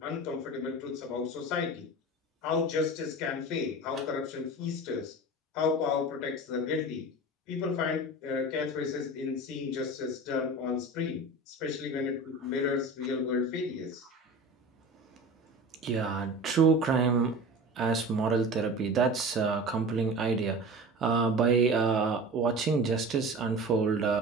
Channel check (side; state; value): both; normal; correlation 0.34